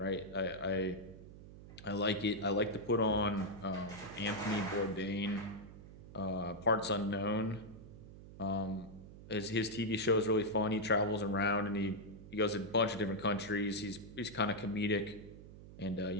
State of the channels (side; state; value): right; noise; hum, 16 dB below the sound